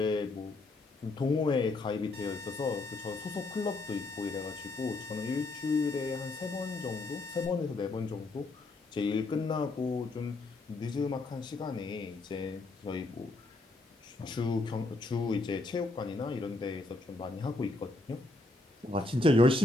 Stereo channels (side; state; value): right; quieter; 3.1 dB